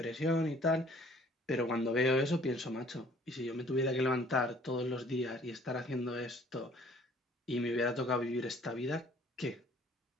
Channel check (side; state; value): both; normal; correlation 0.56